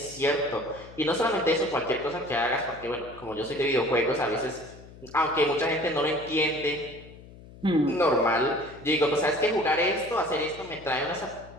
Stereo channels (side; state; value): left; noise; hum, 19 dB below the sound